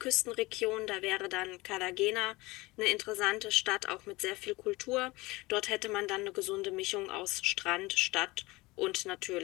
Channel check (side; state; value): right; quieter; 21.7 dB